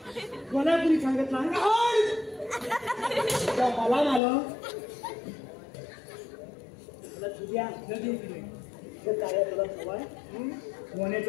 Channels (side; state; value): right; drops out; at 4.2 s